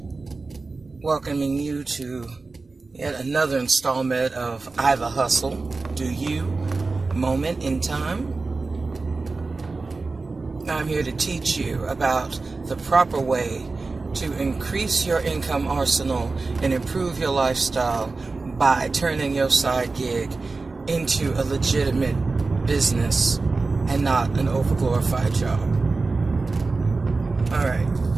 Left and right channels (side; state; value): left; quieter; 3.8 dB